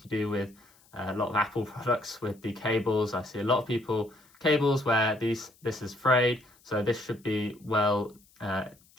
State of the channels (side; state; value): left; noise; hiss, 30 dB below the sound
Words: you do with a lot of Apple products with the cables. I see a lot of people cables where this is frayed, so this should be well